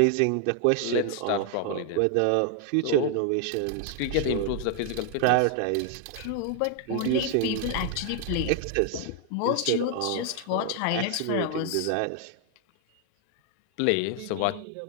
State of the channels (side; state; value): both; different; correlation 0.00